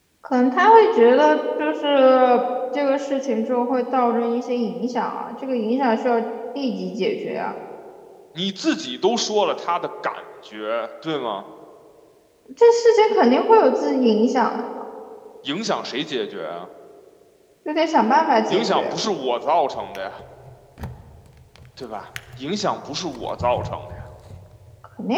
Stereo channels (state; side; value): identical; both; correlation 1.00